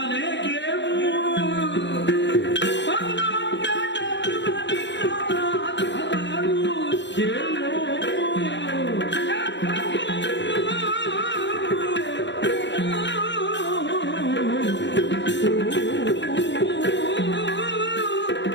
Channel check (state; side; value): late; right; 0.52 ms